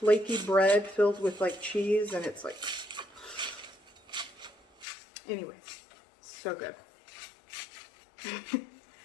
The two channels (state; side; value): drops out; right; at 4.9 s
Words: bread filled with like cheese, and it's like, anyway, so good.